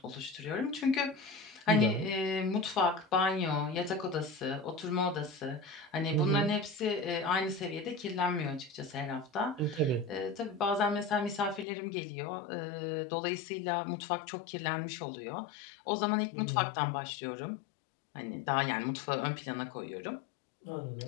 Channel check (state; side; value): drops out; right; at 11.7 s